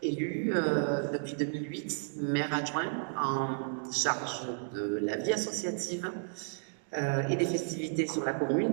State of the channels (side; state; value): left; silent; digital silence